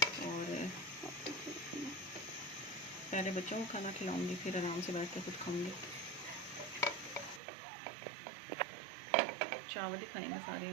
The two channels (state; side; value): drops out; left; at 7.4 s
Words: पहले बच्चों को खाना खिलाऊंगी फिर आराम से बैठ कर खुद खाऊंगी। चावल ही खाएंगे सारे